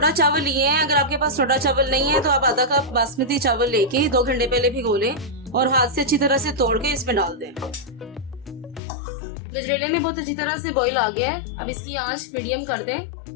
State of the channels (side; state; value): right; drops out; at 8.8 s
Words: चावल लिए हैं, अगर आपके पास टोटा चावल नहीं है तो आप आधा कप बासमती चावल लेके 2 घंटे पहले भिगो लें और हाथ से अच्छी तरह से तोड़ के इसमें डाल दें। गजरेले में बहुत अच्छी तरह से बॉईल आ गया है। अब इसकी आंच मीडियम कर